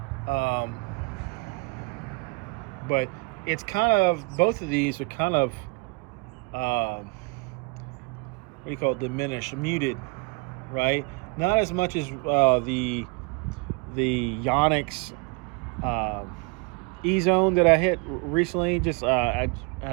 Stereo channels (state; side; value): quieter; left; 30.0 dB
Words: But it's kind of, both of these are kind of what do you call it, diminished, muted, right? Not as much as the Yonex E-Zone that I hit recently. Just I